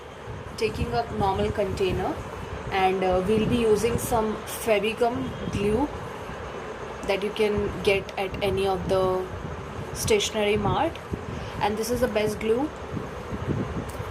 taking a normal container, and we'll be using some Fevicum glue that you can get at any of the stationery mart, and this is the best glue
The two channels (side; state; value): both; identical; correlation 1.00